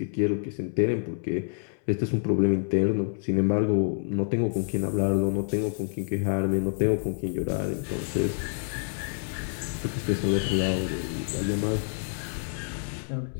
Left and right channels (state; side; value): silent; right; 60 dB below the other